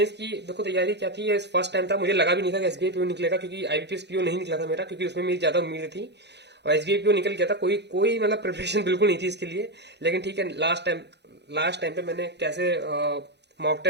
की देखो तैयारी क्या थी, फर्स्ट टाइम था, मुझे लगा भी नहीं था कि एसबीआई पीओ निकलेगा, क्योंकि आईबीपीएस पीओ नहीं निकला था मेरा, क्योंकि उसमें मेरी ज्यादा उम्मीद थी। और एसबीआई पीओ निकल गया था। कोई कोई मतलब प्रिपरेशन बिल्कुल नहीं थी इसके लिए। लेकिन ठीक है, लास्ट टाइम पे मैंने कैसे मॉक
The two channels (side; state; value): left; late; 0.50 ms